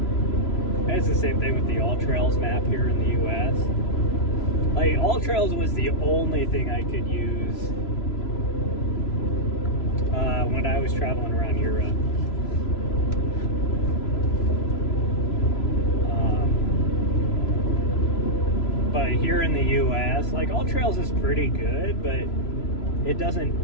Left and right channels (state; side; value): late; right; 3.0 ms